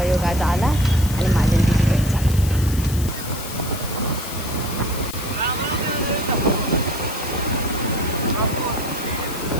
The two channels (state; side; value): noise; left; hiss, 11 dB below the sound